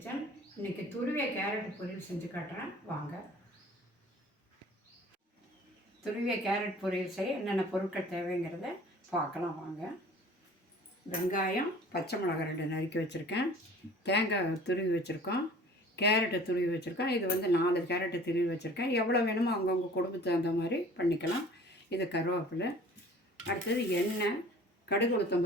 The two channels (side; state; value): both; normal; correlation 0.48